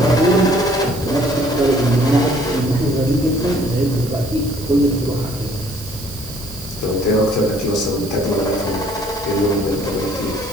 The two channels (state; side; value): noise; right; hiss, 14 dB below the sound